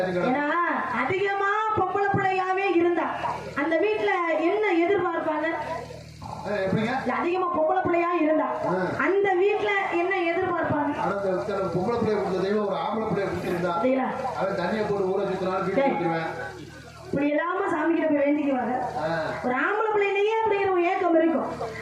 ஏன்னா அதிகமா பொம்பளை பிள்ளையாவே இருந்தா அந்த வீட்டுல என்ன எதிர்பார்ப்பாங்க? எப்படிங்க? அதிகமா பொம்பளை பிள்ளையா இருந்தா அந்த வீட்டுல என்ன எதிர்பார்ப்பாங்க? பொம்பளை பிள்ளைய கொடுத்த தெய்வம் ஒரு ஆம்பளை பிள்ளைய கொடுத்திருந்தா அவன் தண்ணியை போட்டு ஊற சுத்தினாலும் வீட்டுல கொடுத்துருவேன். இப்படி எல்லாம சாமி கிட்ட போய் வேண்டிக்குவாங்க. ஒரு ஆம்பளை பிள்ளையிலேயே அப்படிங்கிற ஒரு ஏக்கம் இருக்கும்.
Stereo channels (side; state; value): both; identical; correlation 1.00